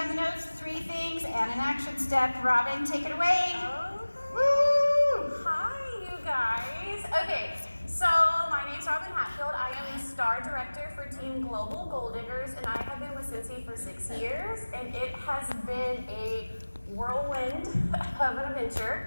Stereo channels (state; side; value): inverted; both; correlation -1.00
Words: the notes, 3 things, and an action step. Robin, take it away. Okay. Woo! Hi, you guys. Okay, so my name's Robin Hatfield. I am the Star Director for Team Global Gold Diggers, and I have been with Scentsy for 6 years, and it has been a whirlwind of an